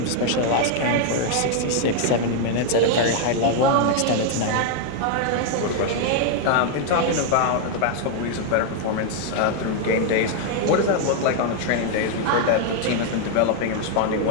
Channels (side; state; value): both; different; correlation 0.00